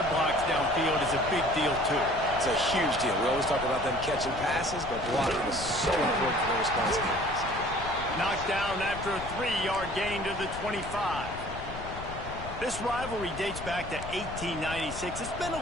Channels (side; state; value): left; noise; rumble, 11 dB below the sound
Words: blocks downfield is a big deal, too. It's a huge deal. We always talk about them catching passes, but blocking is so important for their responsibilities. Knocked down after a 3-yard gain to the 25. This rivalry dates back to 1896. It's been a